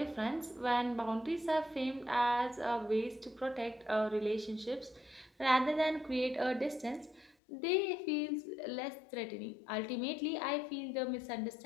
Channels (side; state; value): right; drops out; at 7.4 s